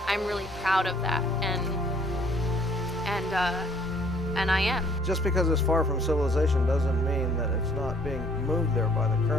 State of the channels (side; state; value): both; normal; correlation 0.60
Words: I'm really proud of that, and I am. Just because it's far from civilization doesn't mean that it's not being moved there by the